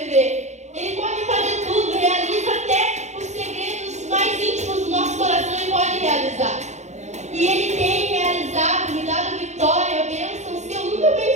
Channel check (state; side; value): late; left; 0.33 ms